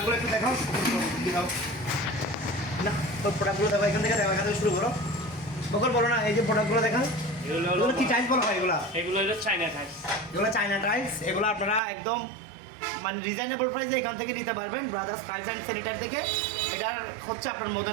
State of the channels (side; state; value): left; drops out; at 11.8 s